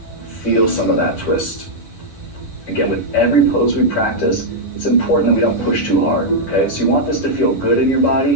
feel some of that twist. Again, with every pose we practice, it's important that we don't push too hard, okay? So you want this to feel good in your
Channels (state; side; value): late; right; 10 ms